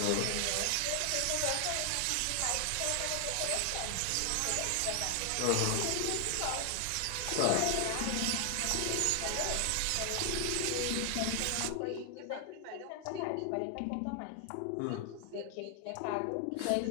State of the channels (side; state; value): both; different; correlation 0.00